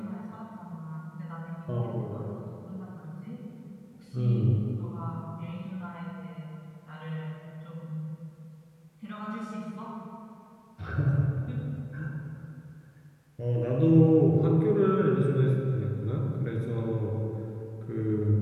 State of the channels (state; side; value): identical; both; correlation 1.00